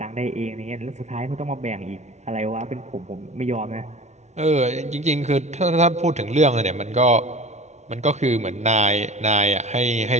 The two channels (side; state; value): left; late; 0.33 ms